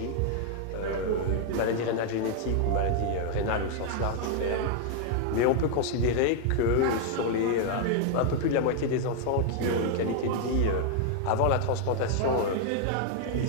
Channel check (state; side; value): different; both; correlation 0.00